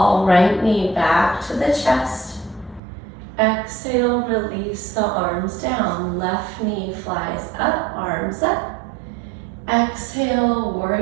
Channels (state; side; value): drops out; left; at 2.8 s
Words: right knee back to the chest. Exhale, release the arms down. Left knee flies up, arms up. Exhale,